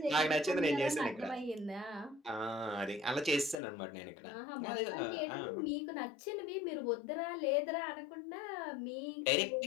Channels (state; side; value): drops out; right; at 3.6 s